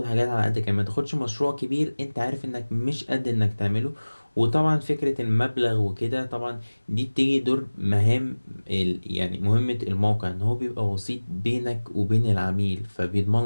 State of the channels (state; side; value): inverted; both; correlation -1.00